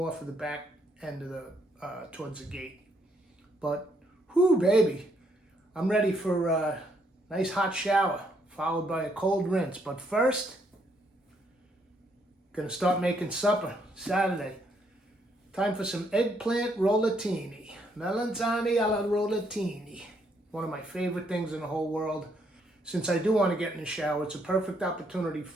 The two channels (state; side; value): normal; both; correlation 0.72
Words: for the back end of the, towards the gate. But, whoo, baby, I'm ready for a nice hot shower, followed by a cold rinse. But first, gonna start making supper, Saturday. Time for some eggplant rollatini. Melanzane alla rollatini. One of my favorite things in the whole world. Since I do want to get in the shower, it's a perfect opportunity